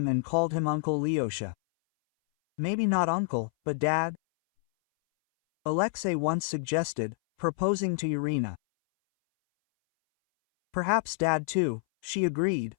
and called him Uncle Lyosha. "Maybe not uncle, but dad?" Alexei once suggested, proposing to Irina. "Perhaps dad too," she agreed,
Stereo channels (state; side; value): silent; right; 59 dB below the other